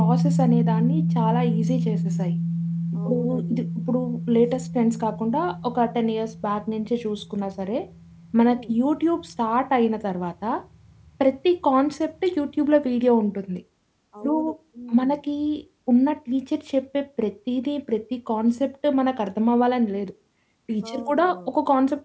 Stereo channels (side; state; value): both; identical; correlation 1.00